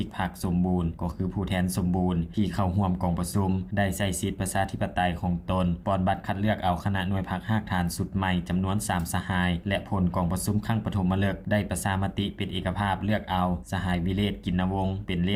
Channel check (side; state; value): both; identical; correlation 1.00